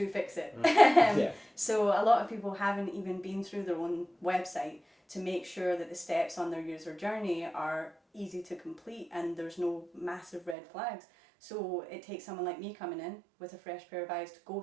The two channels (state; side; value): drops out; left; at 10.6 s